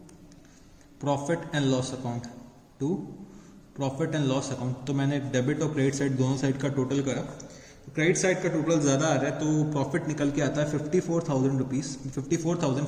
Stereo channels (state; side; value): identical; both; correlation 1.00